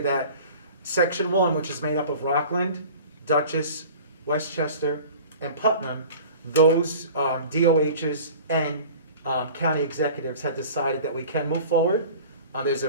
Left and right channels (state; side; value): inverted; both; correlation -0.41